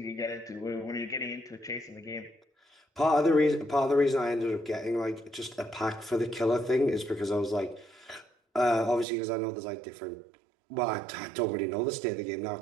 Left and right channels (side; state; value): left; drops out; at 9.1 s